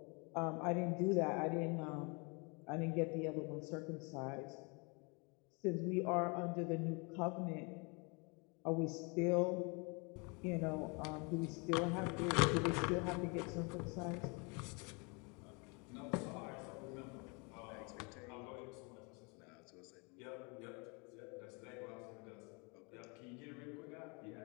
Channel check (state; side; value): quieter; right; 31.7 dB